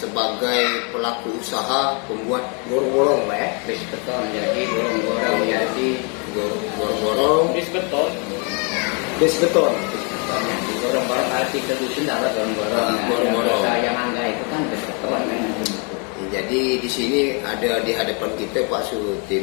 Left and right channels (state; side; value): quieter; right; 35.3 dB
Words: pelaku usaha pembuat gorong-gorong, Pak ya. Bis beton jadi gorong-gorong jadi Gorong-gorong bis beton. Gorong-gorong kalau kita dusun dapat gorong-gorong. Gorong-gorong. Yang angga itu kan bis beton kan. Jadi di sini ada di hadapan kita Pak